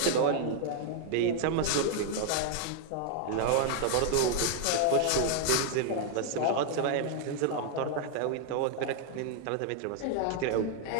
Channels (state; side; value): different; both; correlation 0.00